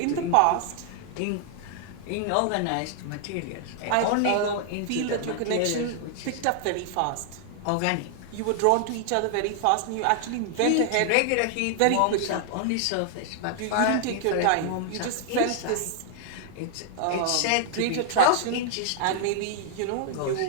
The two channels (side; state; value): both; different; correlation 0.00